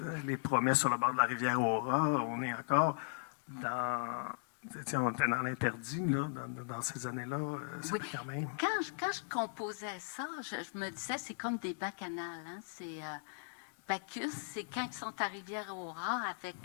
les promesses sur le bord de la rivière Aura. On est encore dans... on était dans l'interdit, là, dans ces années-là. oui. Quand même... Quand je composais ça, je me disais, c'est comme des bacchanales. Hein? C'est Bacchus, c'est quand ils sont à Rivière-Aura avec...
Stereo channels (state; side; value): silent; right; digital silence